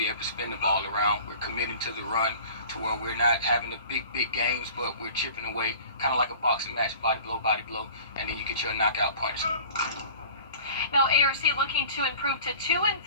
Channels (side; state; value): both; inverted; correlation -0.44